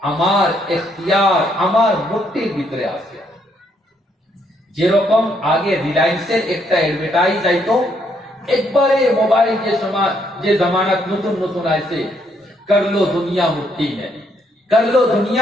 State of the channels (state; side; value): normal; both; correlation 0.72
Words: আমার এখতিয়ার, আমার মুঠির ভিতরে আছে। যেরকম আগে রিলায়েন্সের একটা অ্যাডভার্টাইজ আইতো, একবারে মোবাইল যে জামানাত নতুন নতুন আইছে, কর লো দুনিয়া মুঠি মে, কর লো